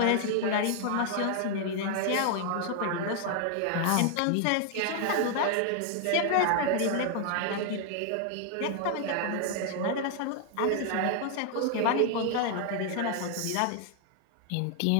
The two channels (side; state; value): both; different; correlation 0.00